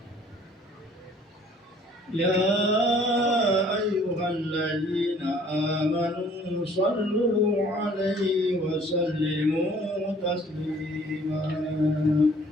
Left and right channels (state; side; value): normal; both; correlation 0.56